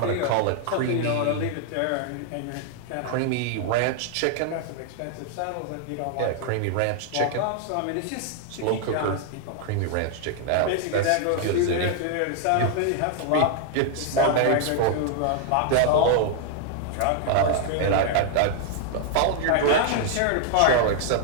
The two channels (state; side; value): different; both; correlation 0.00